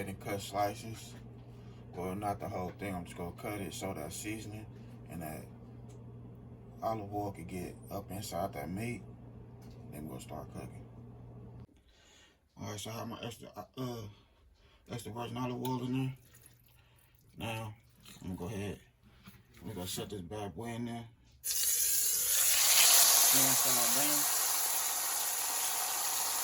and cut slices. Well, not the whole thing. I'm just gonna cut it so that seasoning and that olive oil can get up inside that meat. Then we'll start cooking. All right, so I have my extra virgin olive oil in there. Now I'm gonna go ahead. We're gonna set this bad boy in there. Inside down.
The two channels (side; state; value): both; identical; correlation 1.00